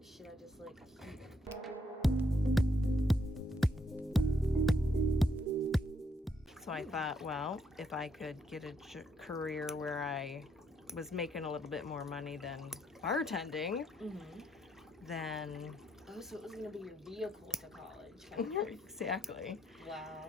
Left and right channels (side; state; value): both; normal; correlation 0.74